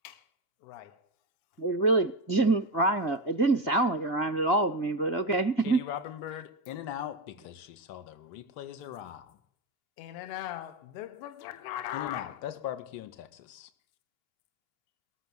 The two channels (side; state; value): right; late; 2.8 ms